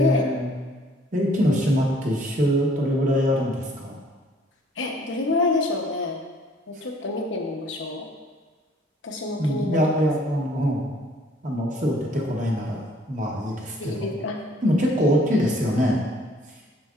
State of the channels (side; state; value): both; normal; correlation 0.59